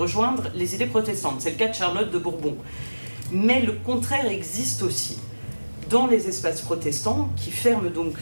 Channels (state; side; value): inverted; both; correlation -1.00